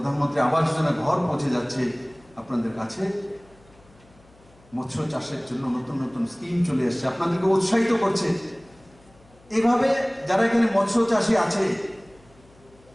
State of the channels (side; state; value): left; noise; hum, 28 dB below the sound